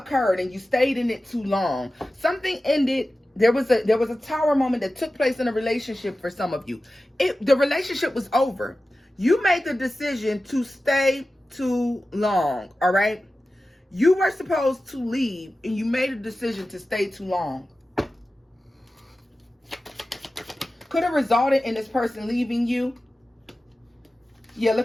and you stayed in it too long. Something ended. There was a tower moment that took place in a relationship for some of you. The relationship was over. You made the decision to stay too long, all right? You were supposed to leave, and you made a decision to stay too long. Could have resulted in this person leaving you. Yeah,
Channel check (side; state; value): both; normal; correlation 0.95